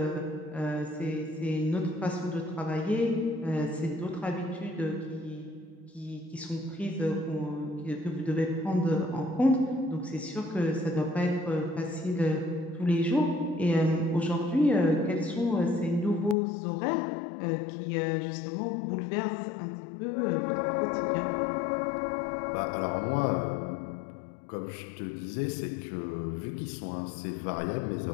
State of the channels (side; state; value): right; drops out; at 16.4 s